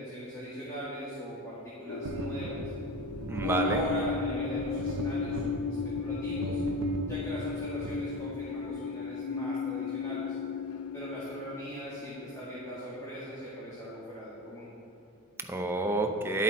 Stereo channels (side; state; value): both; normal; correlation 0.28